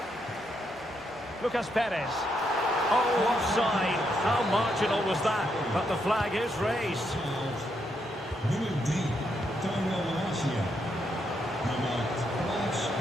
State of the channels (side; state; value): both; normal; correlation 0.78